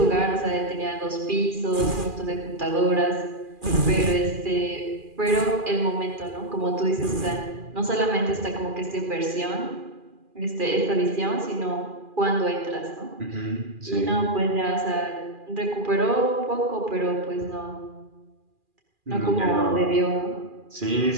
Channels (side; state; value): left; late; 2.4 ms